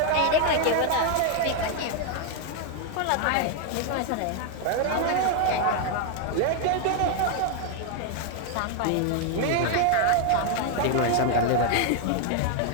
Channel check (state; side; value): different; both; correlation 0.00